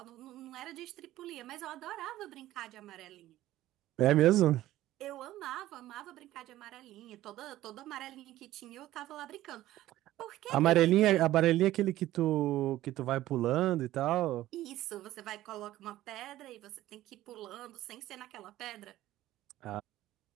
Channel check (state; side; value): quieter; left; 14.9 dB